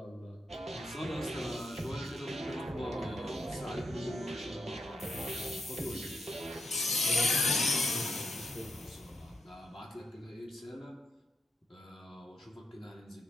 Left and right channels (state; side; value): normal; both; correlation 0.82